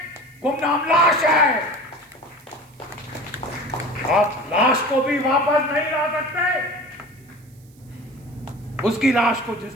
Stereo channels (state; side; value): noise; right; hiss, 30 dB below the sound